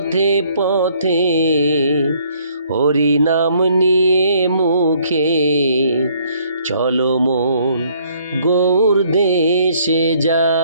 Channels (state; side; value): inverted; both; correlation -0.64